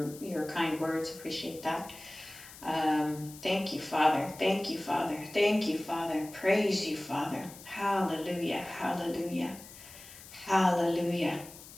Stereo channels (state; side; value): noise; left; hiss, 17 dB below the sound